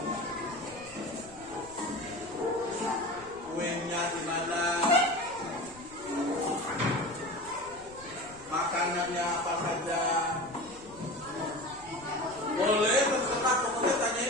Kuenya di mana? Makanannya apa saja? Boleh terserah, pokoknya tanya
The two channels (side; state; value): left; noise; rumble, 22 dB below the sound